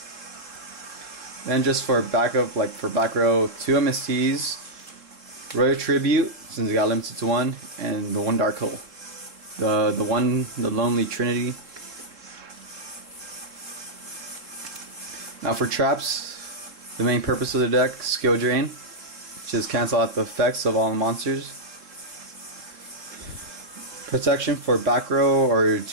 Then just for backup, for back row, 2 MSTs, Royal Tribute, since it got limited to 1, and the 1 Dark Hole. The Lonely Trinity. Now for traps, the main purpose of the deck, Skill Drain, just cancel out the effects of all the monsters. Protection for back row or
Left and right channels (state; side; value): late; left; 3.7 ms